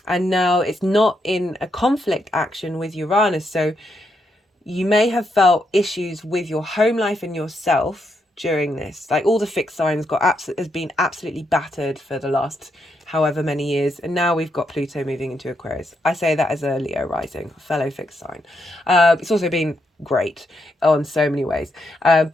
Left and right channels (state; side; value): normal; both; correlation 0.80